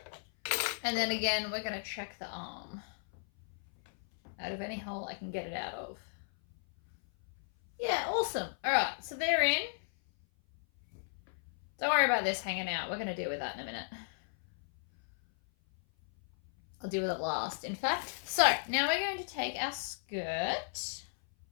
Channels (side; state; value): right; silent; 55 dB below the other